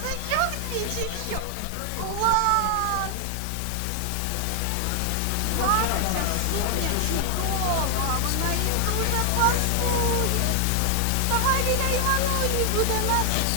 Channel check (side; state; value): both; different; correlation 0.00